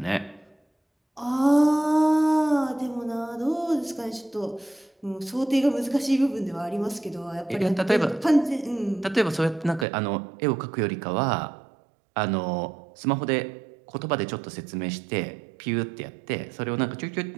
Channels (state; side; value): drops out; left; at 9.9 s